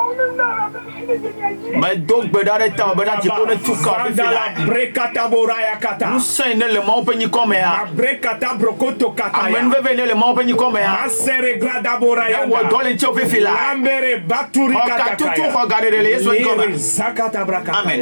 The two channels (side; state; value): both; inverted; correlation -1.00